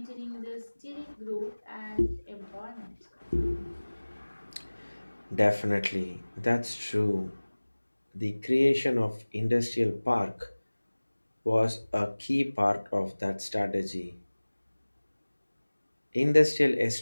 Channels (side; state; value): both; inverted; correlation -1.00